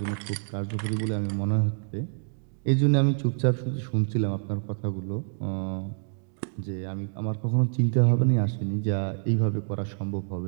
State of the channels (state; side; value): silent; left; digital silence